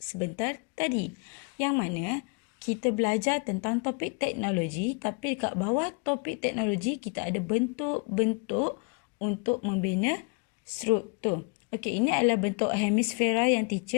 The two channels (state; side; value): quieter; right; 32.5 dB